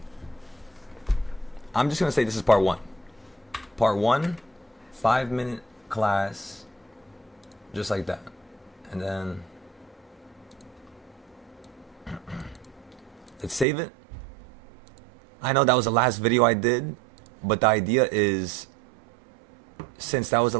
I'm just going to say this is part 1. Part 1, 5-minute class, just like that. And then let's save it. I know that was the last video I did, but the idea is, since that was the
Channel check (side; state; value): left; drops out; at 13.7 s